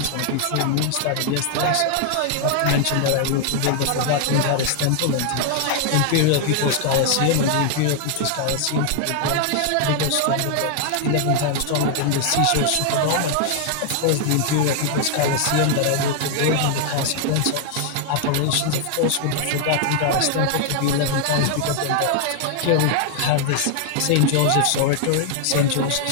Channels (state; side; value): different; both; correlation 0.00